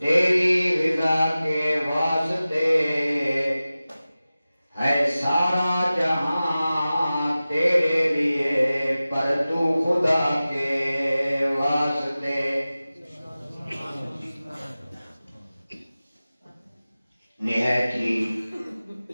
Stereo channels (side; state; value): both; inverted; correlation -0.96